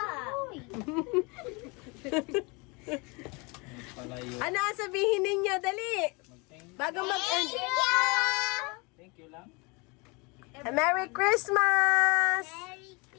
Palayo. Ano ang sabihin ninyo? Dali. Mag-thank Bago mag-end. thank you lang. Merry Christmas! Merry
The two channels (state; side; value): quieter; right; 28.8 dB